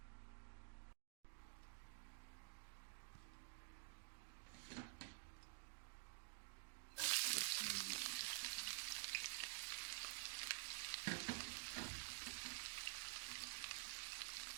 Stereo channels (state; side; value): silent; left; digital silence